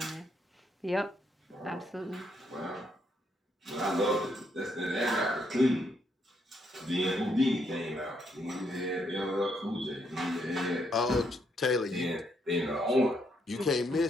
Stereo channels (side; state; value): both; normal; correlation 0.75